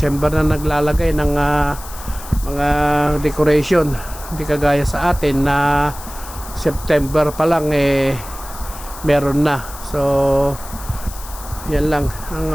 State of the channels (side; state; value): left; noise; hiss, 15 dB below the sound